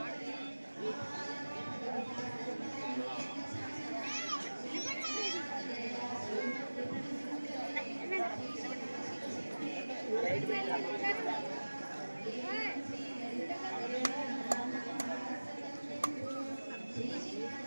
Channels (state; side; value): inverted; both; correlation -1.00